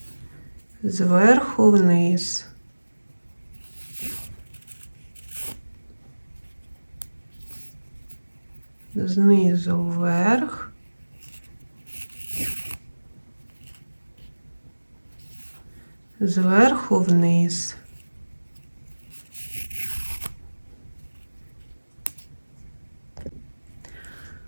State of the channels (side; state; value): both; inverted; correlation -1.00